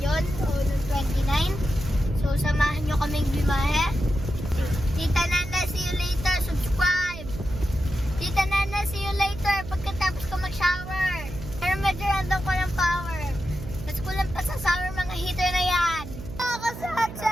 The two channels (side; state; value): right; noise; hum, 11 dB below the sound